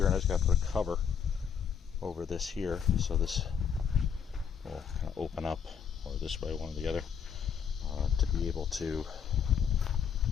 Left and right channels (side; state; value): right; quieter; 7.4 dB